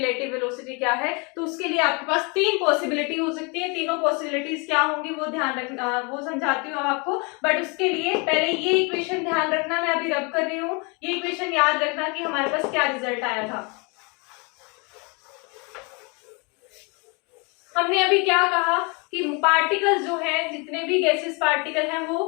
वेलोसिटी क्या है? तो उसके लिए आपके पास तीन पॉसिबिलिटी हो सकती है। तीनों पॉसिबिलिटीज क्या होंगी वो ध्यान रखना, वो समझाती हूँ आपको, बट उसके लिए पहले ये इक्वेशन ध्यान रखना, मैं अभी रब कर रही हूँ, ये इक्वेशन याद रखना कि हमारे पास क्या रिजल्ट आया था। हमने अभी क्या कहा कि पार्टिकल्स जो है, जितने भी गैसेस पार्टिकल हैं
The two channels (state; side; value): quieter; right; 31.3 dB